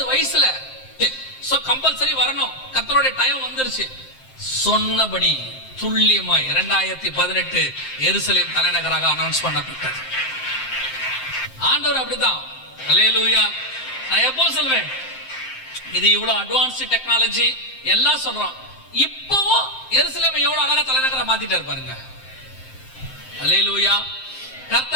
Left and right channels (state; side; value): late; right; 7.7 ms